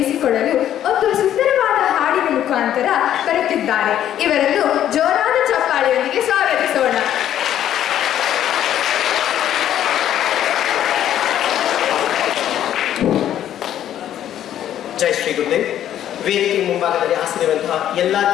ಒಂದು ಸುಂದರವಾದ ಹಾಡಿನ ಮುಖಾಂತರ ಬರುತ್ತಿದ್ದಾರೆ. ಇವರನ್ನು ಜೋರಾದ ಚಪ್ಪಾಳೆಯೊಂದಿಗೆ ಸ್ವಾಗತಿಸೋಣ. ಜೈ ಶ್ರೀ ಗುರುದೇವ್. ವೇದಿಕೆ ಮುಂಭಾಗದಲ್ಲಿ ಆಸನಿರುವಂತಹ ಎಲ್ಲ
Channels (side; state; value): right; quieter; 11.1 dB